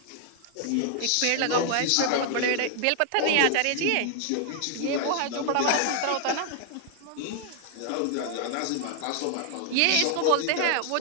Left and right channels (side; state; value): both; different; correlation 0.00